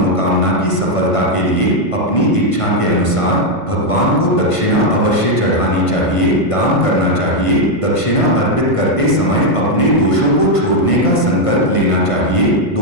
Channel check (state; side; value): late; right; 1.5 ms